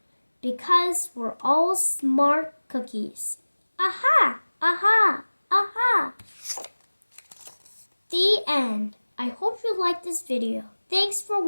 because we're all smart cookies. Aha! Aha! Aha! The end. I hope you liked this video. Thanks for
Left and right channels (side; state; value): both; inverted; correlation -1.00